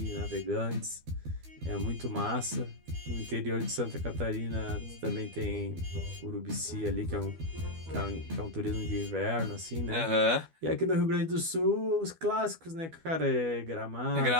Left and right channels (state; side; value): late; left; 12 ms